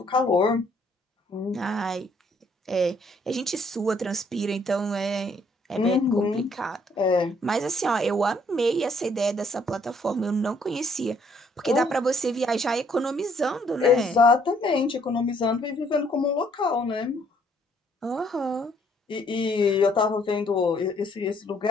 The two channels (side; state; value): both; normal; correlation 0.66